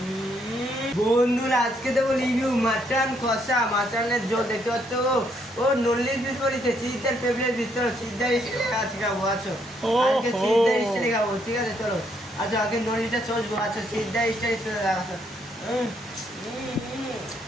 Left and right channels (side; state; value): both; normal; correlation 0.72